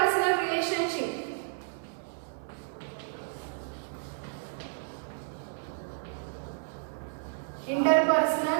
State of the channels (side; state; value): left; silent; 57 dB below the other